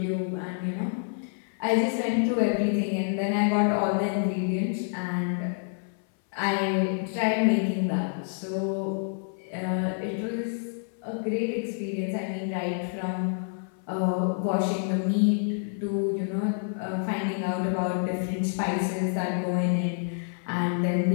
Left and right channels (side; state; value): right; silent; 58 dB below the other